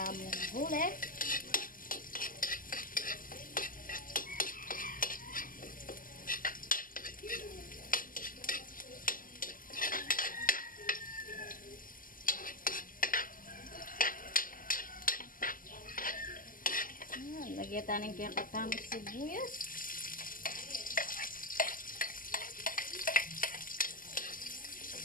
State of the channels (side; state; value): right; late; 0.40 ms